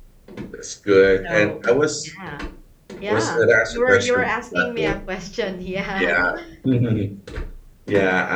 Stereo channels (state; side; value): identical; both; correlation 1.00